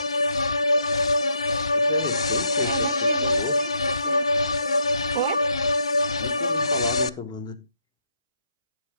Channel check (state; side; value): inverted; both; correlation -0.79